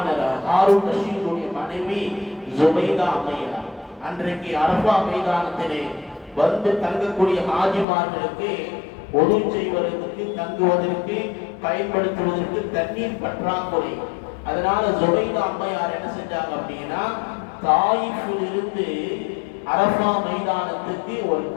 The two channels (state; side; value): drops out; right; at 7.9 s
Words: ஹாரூன் ரஷீதுடைய மனைவி ஜுபைதா அம்மையார். அன்றைக்கு அரஃபா மைதானத்திலே வந்து தங்கக்கூடிய ஹாஜிமார்களுக்கு ஒது செய்வதற்கு, தங்குவதற்கு, பயன்படுத்துவதற்கு தண்ணீர் பற்றாக்குறை. அதனால ஜுபைதா அம்மையார் என்ன செஞ்சாங்க அப்படின்னா, தாயிஃபில் இருந்து அரஃபா மைதானத்துக்கு ஒரு